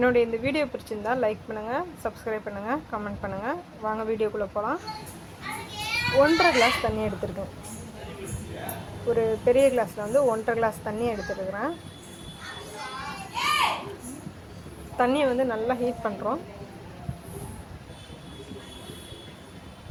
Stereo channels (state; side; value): identical; both; correlation 1.00